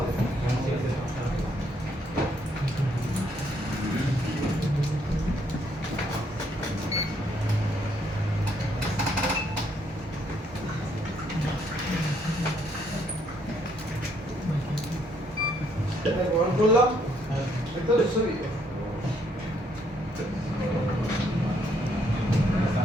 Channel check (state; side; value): normal; both; correlation 0.70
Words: গ্রহণ করলাম এটা ছবি